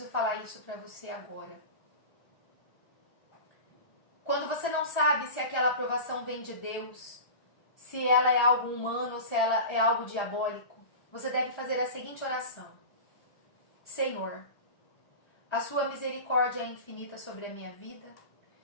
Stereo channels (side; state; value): right; late; 1.3 ms